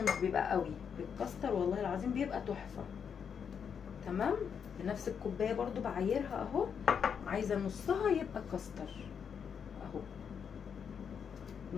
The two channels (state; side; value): quieter; right; 7.1 dB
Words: مش بيبقى قوي، بالكاستر والله العظيم بيبقى تحفه. تمام، بنفس الكوبايه برضو بعايرها اهو، عايزه نصها يبقى كاستر اهو،